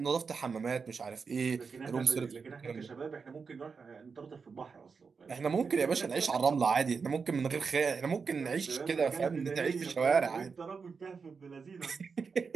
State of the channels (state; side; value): quieter; left; 5.3 dB